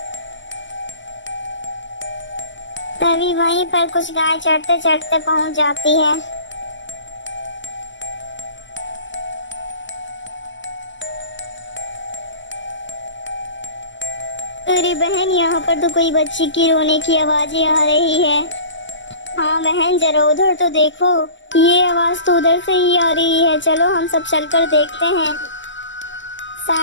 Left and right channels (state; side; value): late; right; 0.54 ms